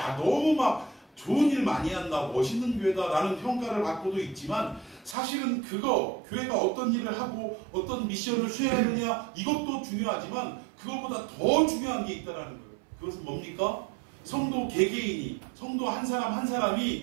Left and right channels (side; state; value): left; drops out; at 5.2 s